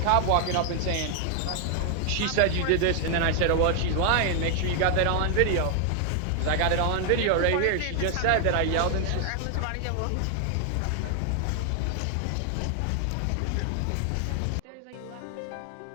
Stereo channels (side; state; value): both; different; correlation 0.00